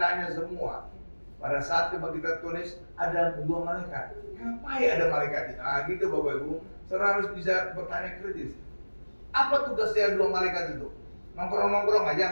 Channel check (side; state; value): both; inverted; correlation -1.00